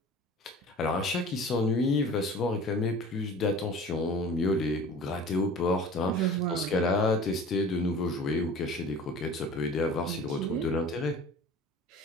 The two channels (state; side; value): normal; both; correlation 0.41